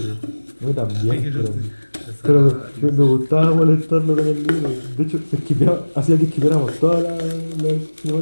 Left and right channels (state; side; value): inverted; both; correlation -1.00